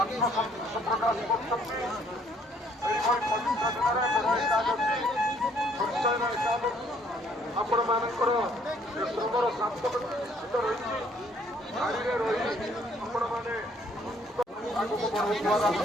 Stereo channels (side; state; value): both; normal; correlation 0.63